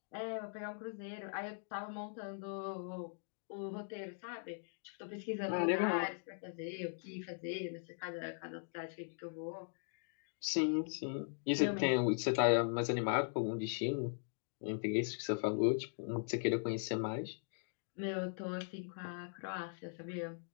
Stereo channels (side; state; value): right; silent; digital silence